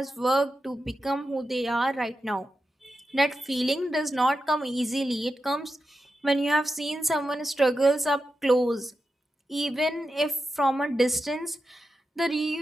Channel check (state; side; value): normal; both; correlation 0.89